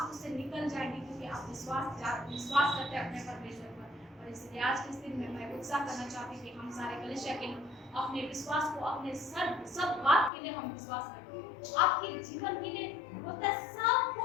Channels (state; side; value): drops out; right; at 10.3 s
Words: उससे निकल जाएंगे, क्योंकि आप विश्वास करते हैं अपने परमेश्वर पर। और इसलिए आज के इस दिन में मैं उत्साह करना चाहती हूँ कि हम सारे कलीसिया के लोग अपने विश्वास को, अपने सब बात के लिए हम विश्वास करें। आपके जीवन के लिए होता है सब